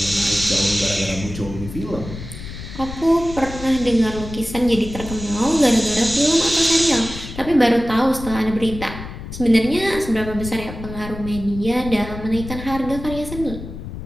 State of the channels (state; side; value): noise; left; rumble, 11 dB below the sound